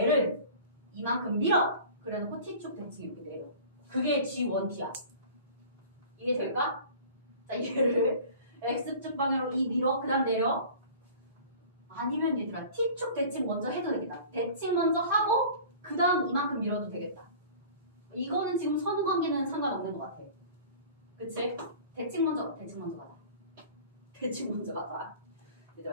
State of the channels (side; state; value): both; inverted; correlation -0.43